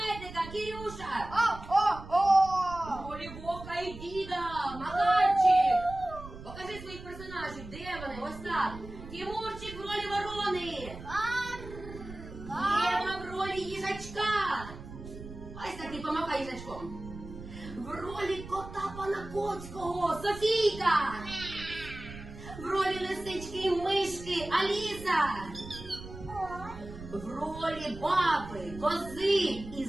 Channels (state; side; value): noise; right; rumble, 13 dB below the sound